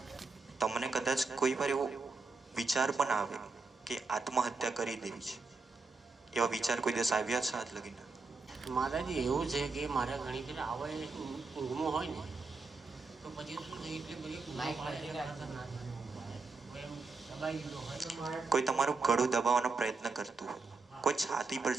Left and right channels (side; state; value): left; quieter; 4.0 dB